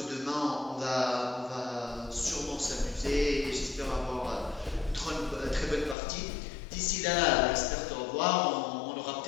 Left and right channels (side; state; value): right; drops out; at 6.0 s